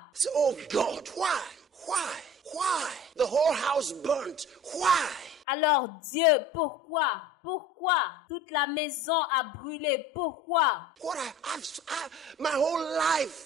So, oh God, why? Why? Why? The whole house burnt. Why? Alors Dieu, pourquoi? Pourquoi? Toute la maison a brûlé. Pourquoi? What my whole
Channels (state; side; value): normal; both; correlation 0.43